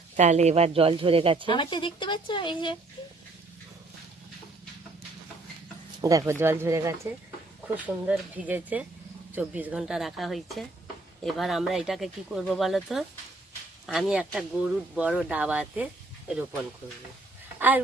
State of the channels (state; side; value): quieter; left; 3.0 dB